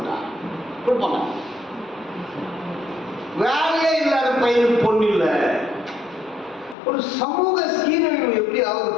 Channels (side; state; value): right; drops out; at 6.8 s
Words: கொடுப்பாங்க. வேலையே இல்லாத பையனுக்கு பொண்ணு இல்லை. ஒரு சமூக சீரழிவு எப்படி ஆகுது